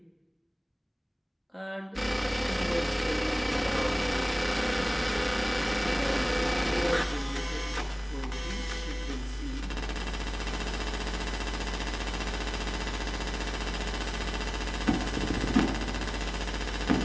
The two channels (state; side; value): identical; both; correlation 1.00